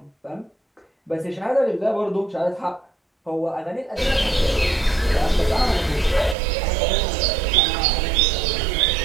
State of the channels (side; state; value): left; drops out; at 6.4 s